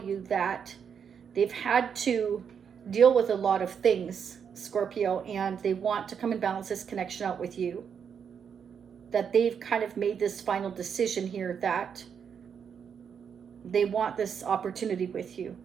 that they've had to deal with a lot of things, Scorpio, and they want to come and balance this connection out with you. That they've kind of made this final decision here that they want this opportunity with you.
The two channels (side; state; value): left; quieter; 7.3 dB